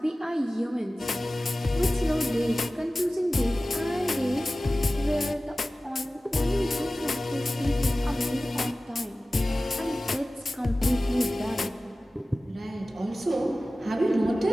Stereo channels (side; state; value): both; normal; correlation 0.96